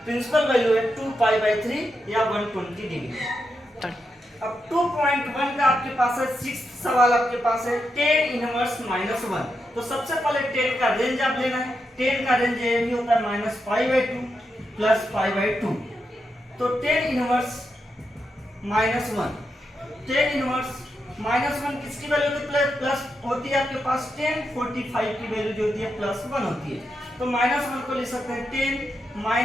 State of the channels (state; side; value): normal; both; correlation 0.85